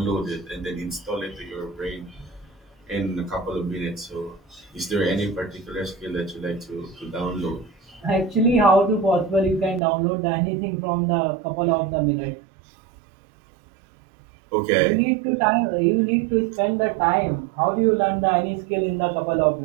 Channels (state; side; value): drops out; left; at 9.8 s